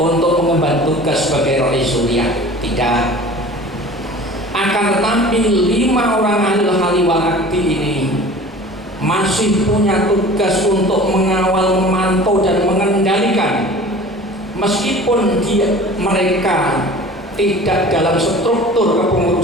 mengemban tugas sebagai rais suriah. Tidak. Akan tetapi 5 orang ahlul hali wal akdi ini masih punya tugas untuk mengawal, memantau dan mengendalikan, meskipun mereka tidak dalam struktur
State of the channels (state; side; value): normal; both; correlation 0.42